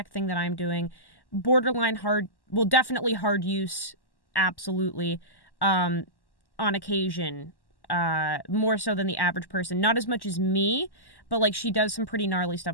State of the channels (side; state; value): right; late; 1.1 ms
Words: thing that I'm doing. Borderline hard, well, definitely hard use, absolutely. On occasion, more so than the average person. Not as much as me, but like she does some pretty gnarly